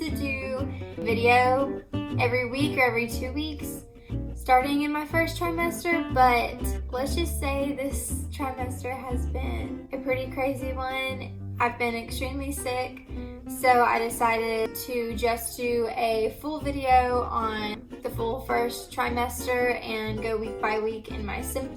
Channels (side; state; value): both; identical; correlation 1.00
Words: do a video every week or every 2 weeks starting in my first trimester, but let's just say this trimester has been a pretty crazy one. I've been extremely sick, so I decided to just do a full video on the full first trimester and go week by week in my